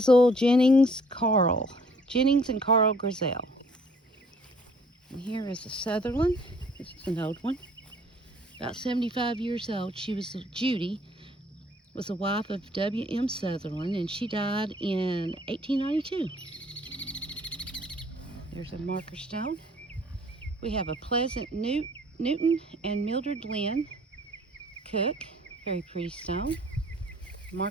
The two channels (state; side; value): normal; both; correlation 0.58